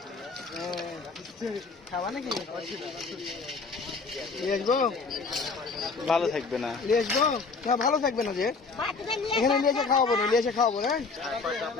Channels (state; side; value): quieter; right; 4.5 dB